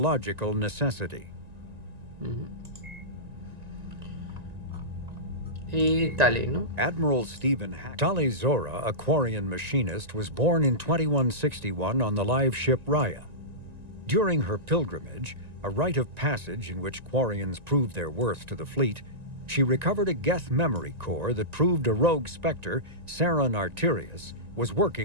necessity. Y Tali, ¿no? Admiral Stephen Tali Zora, a Quarian machinist, was born in 2161 on the live ship Raya. During her pilgrimage, a rite of passage in which Quarians proved their worth to the fleet, she recovered a Geth memory core that proved a rogue spectre, Saron Arterius, was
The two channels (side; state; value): left; late; 1.9 ms